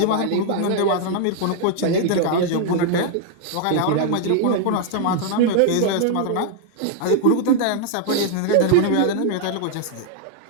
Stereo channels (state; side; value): different; both; correlation 0.00